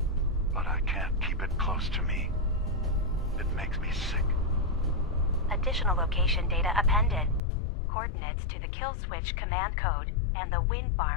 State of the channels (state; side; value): drops out; right; at 7.4 s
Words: But I can't keep it close to me. It makes me sick. Additional location data appended. Coordinates to the kill switch command code and the wind